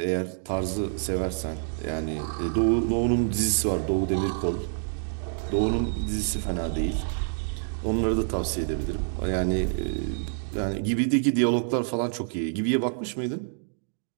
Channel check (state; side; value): silent; left; digital silence